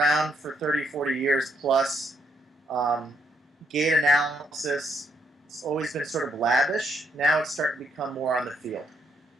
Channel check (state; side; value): normal; both; correlation 0.75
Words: for 30, 40 years plus. Gait analysis, it's always been sort of lavish. Now it's starting to become more on the field.